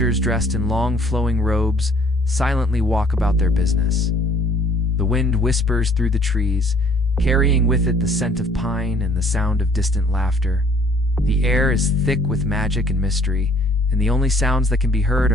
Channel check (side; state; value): both; normal; correlation 0.59